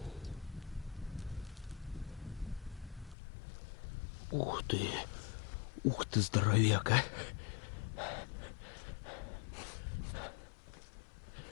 Ух ты, здоровяк, а.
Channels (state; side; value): drops out; right; at 3.2 s